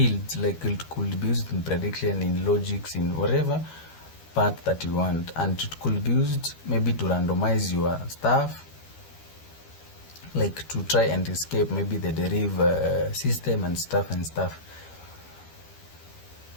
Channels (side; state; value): right; late; 13 ms